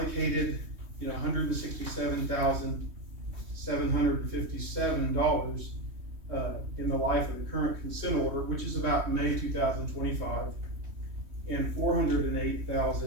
you know, $167,757 in the life of the current consent order, which is about May 2025, and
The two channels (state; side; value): late; left; 3.2 ms